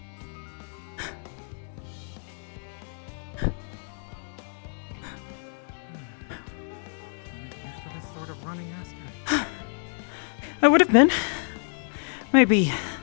Used to this sort of running, Aster. I would have been. Maybe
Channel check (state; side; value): silent; right; digital silence